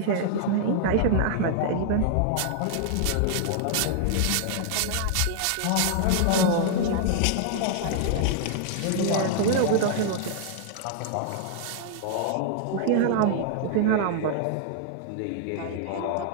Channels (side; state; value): both; different; correlation -0.01